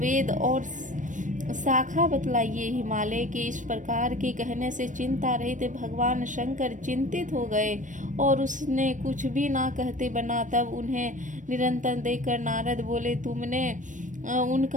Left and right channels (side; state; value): left; late; 0.37 ms